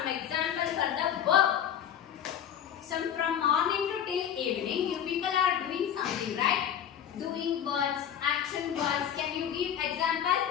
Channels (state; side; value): quieter; right; 9.4 dB